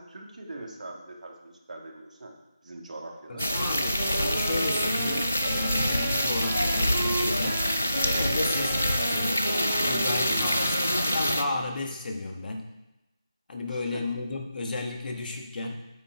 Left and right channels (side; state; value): both; inverted; correlation -0.84